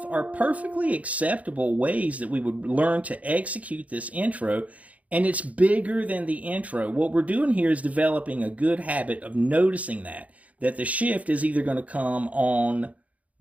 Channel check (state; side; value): late; left; 0.069 ms